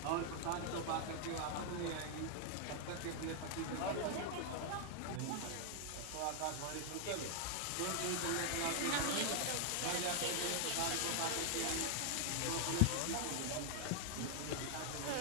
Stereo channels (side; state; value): both; different; correlation 0.00